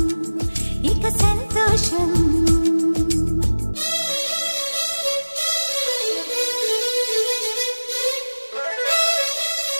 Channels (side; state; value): both; inverted; correlation -1.00